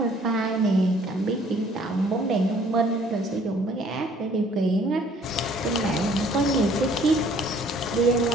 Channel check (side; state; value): both; normal; correlation 0.58